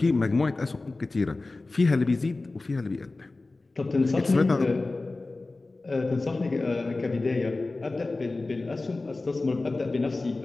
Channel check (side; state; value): right; quieter; 3.3 dB